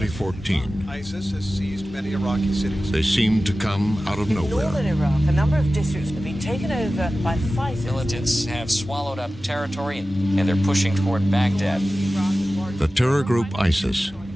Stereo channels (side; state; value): both; normal; correlation 0.95